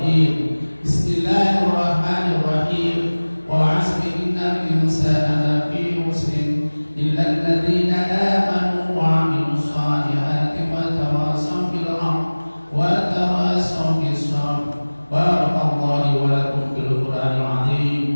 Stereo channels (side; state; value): both; inverted; correlation -1.00